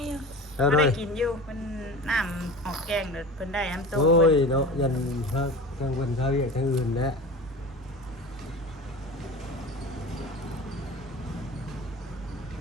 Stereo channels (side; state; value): both; normal; correlation 0.34